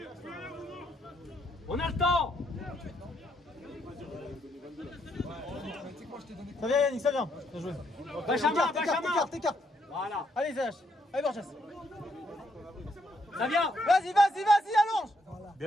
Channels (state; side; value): normal; both; correlation 0.75